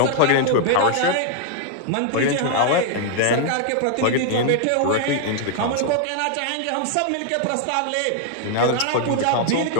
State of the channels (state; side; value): different; both; correlation 0.00